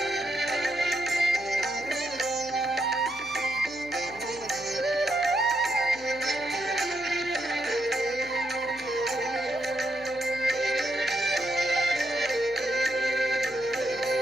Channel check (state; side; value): noise; left; hum, 21 dB below the sound